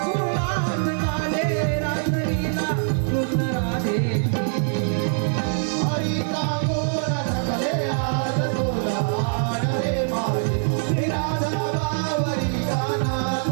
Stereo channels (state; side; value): silent; left; digital silence